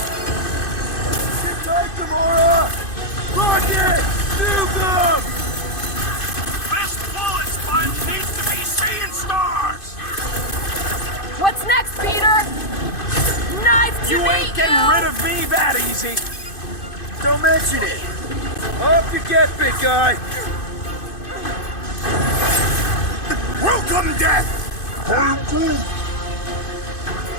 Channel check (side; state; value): right; late; 2.5 ms